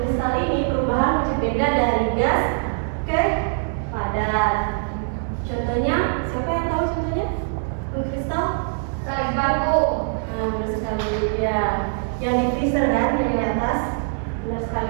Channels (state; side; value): silent; left; digital silence